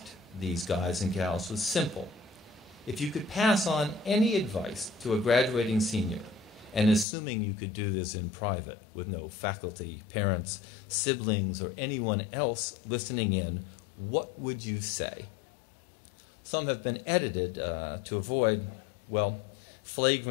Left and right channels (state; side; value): drops out; right; at 7.1 s